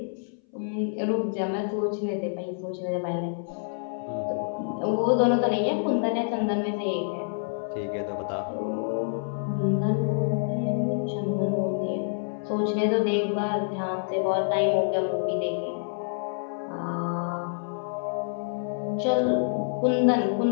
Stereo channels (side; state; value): right; silent; 59 dB below the other